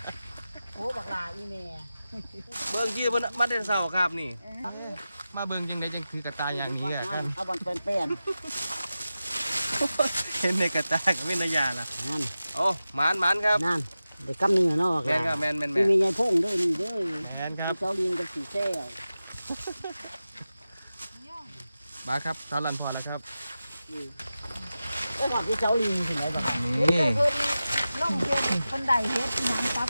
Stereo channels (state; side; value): inverted; both; correlation -0.94